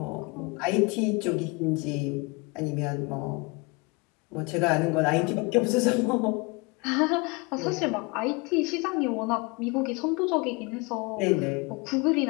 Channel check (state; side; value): quieter; right; 28.0 dB